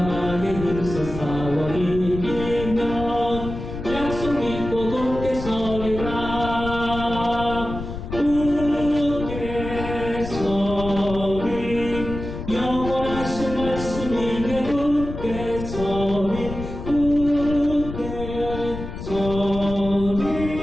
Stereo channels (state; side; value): noise; left; rumble, 8 dB below the sound